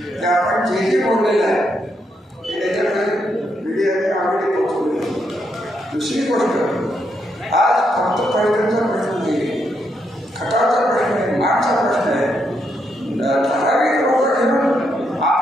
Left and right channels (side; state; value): both; normal; correlation 0.79